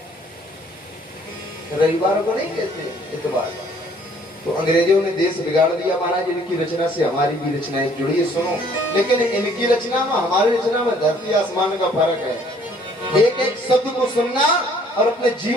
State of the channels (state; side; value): normal; both; correlation 0.60